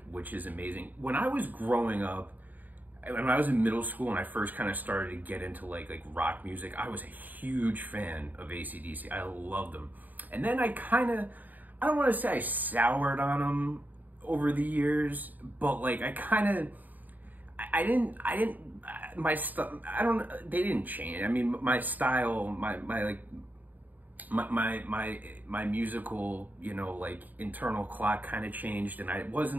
which is amazing. When I was growing up, when I was in middle school and I first kind of started to get into like rock music, I was a huge fan of AC/DC. I loved them. And then I don't want to say I soured on them over the years, but like I didn't, my stuff, they didn't change. I mean, my style, my musical, like internal clock kind of changed, and I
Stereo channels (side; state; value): left; late; 0.084 ms